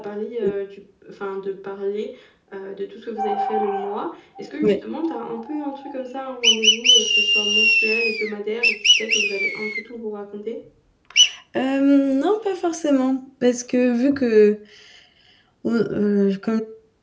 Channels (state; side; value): identical; both; correlation 1.00